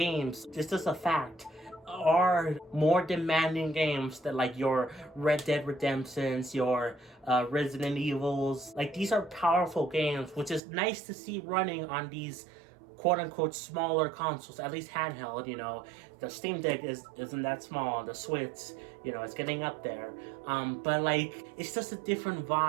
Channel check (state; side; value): drops out; left; at 10.6 s